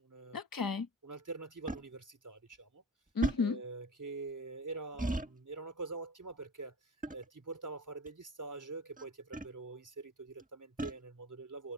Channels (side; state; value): both; normal; correlation 0.33